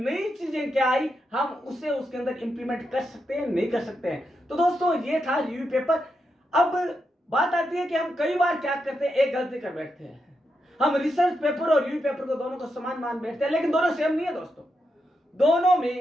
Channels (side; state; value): both; normal; correlation 0.84